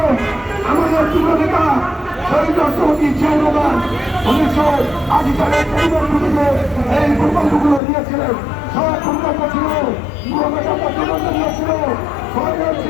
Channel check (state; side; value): drops out; right; at 7.8 s